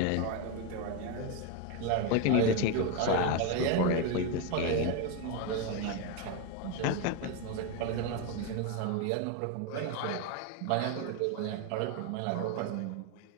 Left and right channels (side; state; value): both; different; correlation 0.02